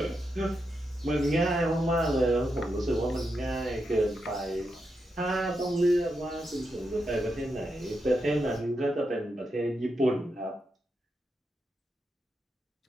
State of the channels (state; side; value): normal; both; correlation 0.85